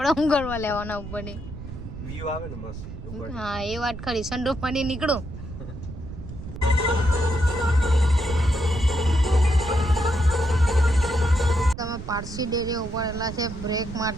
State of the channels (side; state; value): right; noise; rumble, 10 dB below the sound